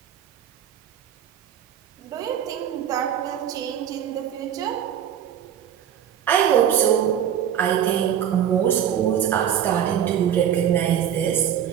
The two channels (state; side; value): quieter; left; 9.6 dB